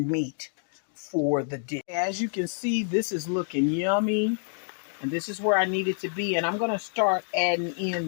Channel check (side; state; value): right; silent; digital silence